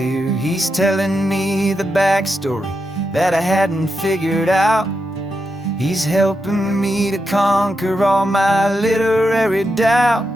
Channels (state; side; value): normal; both; correlation 0.86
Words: He's telling me the backstory that I hadn't figured out. He's helping me to conquer all my literary doubt.